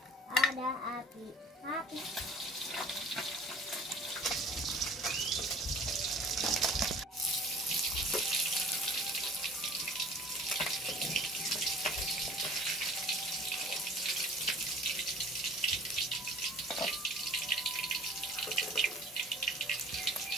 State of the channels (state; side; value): normal; both; correlation 0.48